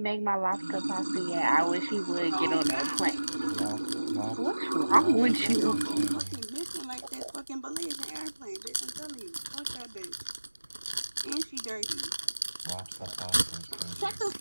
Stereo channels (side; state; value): both; inverted; correlation -1.00